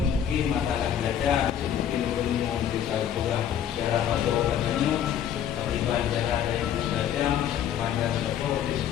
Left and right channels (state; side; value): quieter; right; 9.5 dB